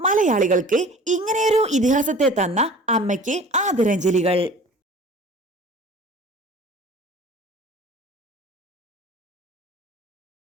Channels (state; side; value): normal; both; correlation 0.44